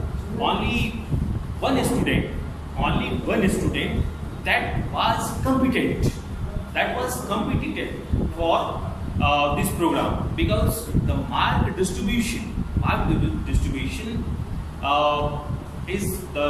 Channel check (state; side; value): identical; both; correlation 1.00